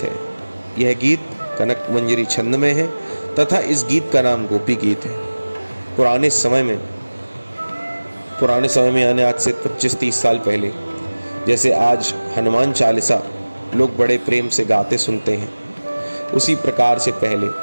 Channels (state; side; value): inverted; both; correlation -1.00